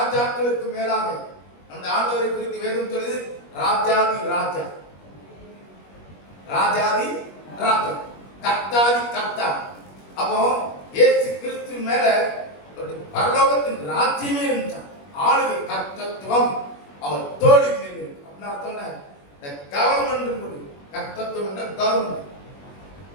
மேலாக அந்த ஆண்டவரை குறித்து வேதம் சொல்லுது, ராஜாதி ராஜா, ராஜாதி ராஜா, கர்த்தாதி கர்த்தா. அப்போ இயேசு கிறிஸ்து மேல பரலோகத்தின் ராஜ்யமே இருந்துச்சான். ஆளுகை கர்த்தத்துவம் அவர் தோழி மேல் இருக்கு. அப்படின்னு அர்த்தம் கவர்மெண்ட், கர்த்தத்துவம் என்ற கவர்மெண்ட்.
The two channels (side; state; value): right; late; 21 ms